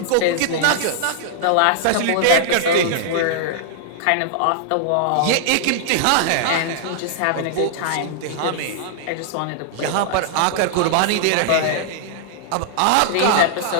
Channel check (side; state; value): both; different; correlation -0.01